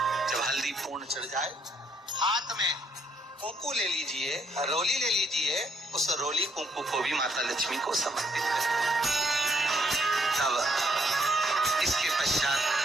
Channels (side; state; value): both; normal; correlation 0.71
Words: जब हल्दी पूर्ण चढ़ जाए, हाथ में कुंकू ले लीजिए, रोली ले लीजिए, उस रोली कुंकू को भी माता लक्ष्मी को समर्पित करें। तब इसके पश्चात